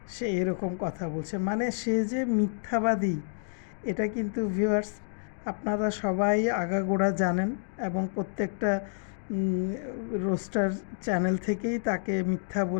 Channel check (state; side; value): silent; right; digital silence